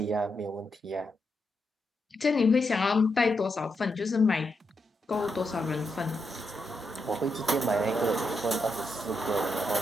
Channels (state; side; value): normal; both; correlation 0.83